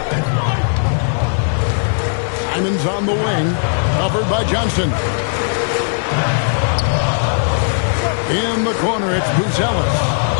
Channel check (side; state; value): right; silent; 58 dB below the other